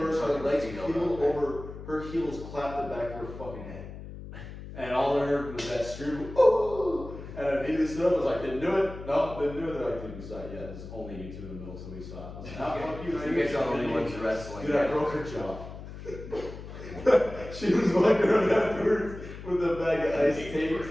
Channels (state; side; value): noise; left; hum, 12 dB below the sound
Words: her legs peeled over, her heels clapped the back of her fucking head. And all I heard was that scream, oh! And I needed to sit up. I was like, didn't do it. No, didn't do it. They're like, dude, we saw it. Yeah, there's only you two in the middle, so we saw it. I was like, nah, fuck you. You guys are the only ones wrestling. Dude, I broke her jaw. She was walking around afterwards with a bag of ice